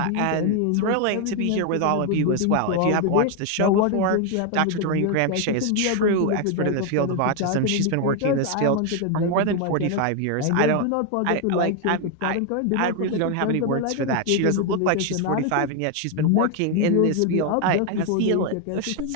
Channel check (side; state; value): both; different; correlation 0.01